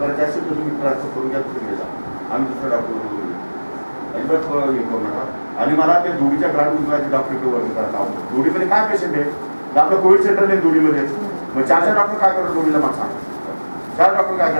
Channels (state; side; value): inverted; both; correlation -1.00